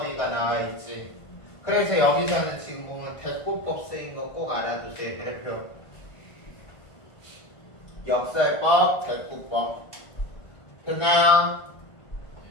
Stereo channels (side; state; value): right; late; 1.5 ms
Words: 나와 있지. 그래서 여기서는 지금 보면 대꾸법 쓰인 거 꼭 알아두세요. 대표 역설법, 대꾸법 됐나요?